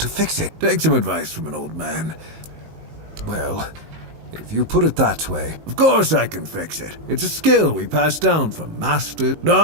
fix it? Take some advice from an old man. Well, If you put it that way, of course I can fix it. It's a skill we pass down from master.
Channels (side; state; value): left; late; 19 ms